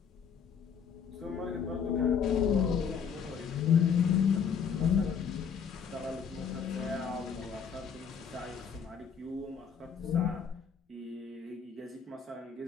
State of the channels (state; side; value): quieter; right; 6.9 dB